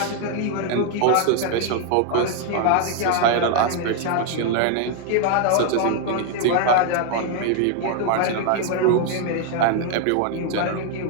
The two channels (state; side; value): different; both; correlation 0.00